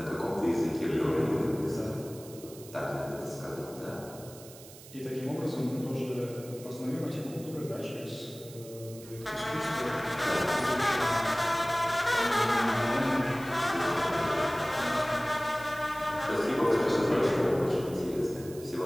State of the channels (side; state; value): right; noise; hiss, 18 dB below the sound